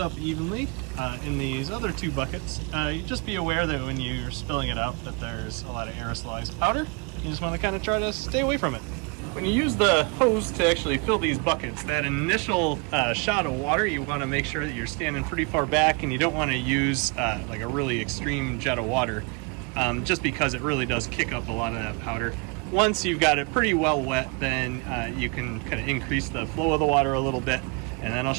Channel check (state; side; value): quieter; left; 31.9 dB